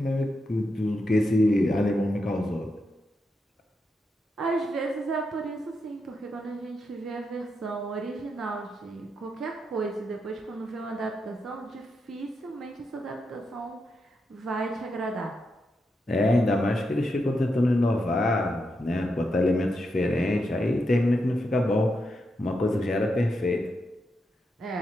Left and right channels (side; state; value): both; normal; correlation 0.84